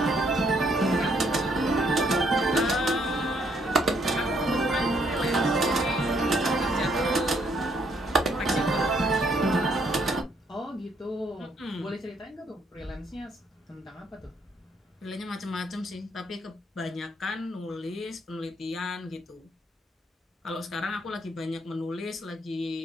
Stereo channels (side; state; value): both; normal; correlation 0.70